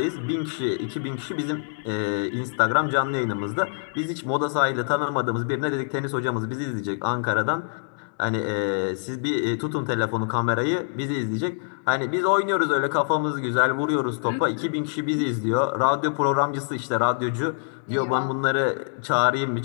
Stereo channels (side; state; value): right; silent; digital silence